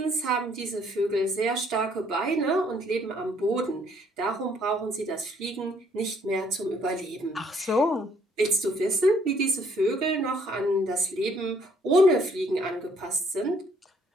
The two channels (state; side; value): normal; both; correlation 0.65